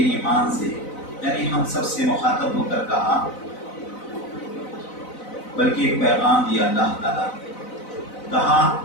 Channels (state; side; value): late; right; 4.0 ms